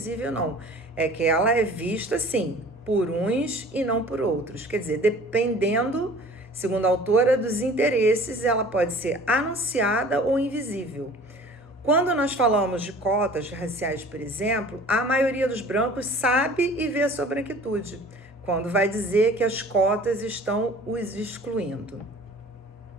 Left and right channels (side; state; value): both; normal; correlation 0.46